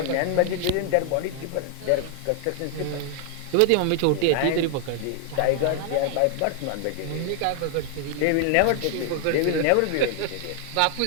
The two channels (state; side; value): different; both; correlation 0.00